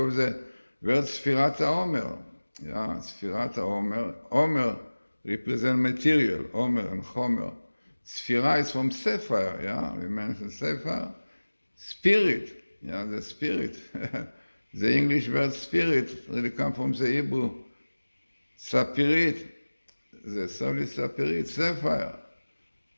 the word Sfirat HaOmer. Yeah, Sfirat HaOmer. Omer represents material, Omer and Chomer. Sphira is from Sefer, yeah, we mentioned Sefer. Spirit, yeah, the spirit. The English word spirit really comes from the Hebrew sapirit. The soul is sapirit, Sefer.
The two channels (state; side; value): inverted; both; correlation -1.00